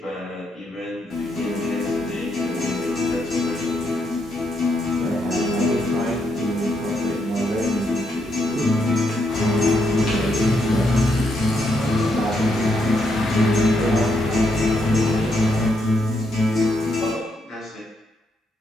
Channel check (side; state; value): both; normal; correlation 0.78